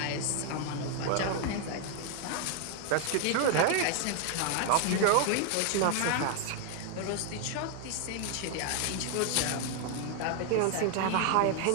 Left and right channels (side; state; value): both; different; correlation 0.00